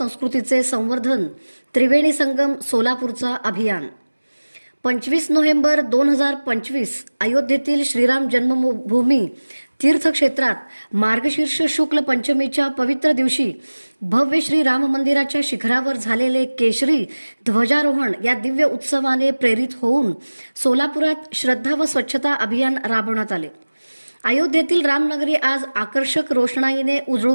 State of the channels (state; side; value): inverted; both; correlation -1.00